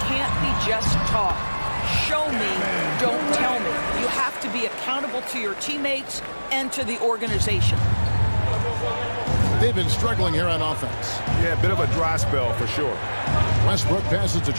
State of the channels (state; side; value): inverted; both; correlation -1.00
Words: be just talk. Show me, don't tell me. You have to be accountable to your teammates and to the organization. They've been struggling here on offense. Yeah, a bit of a dry spell for sure. Westbrook passes to